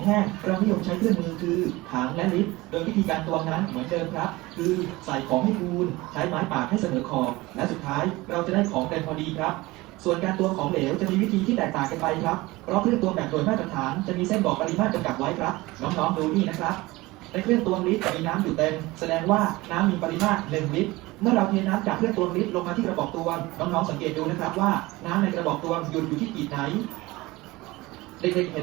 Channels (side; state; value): left; quieter; 20.6 dB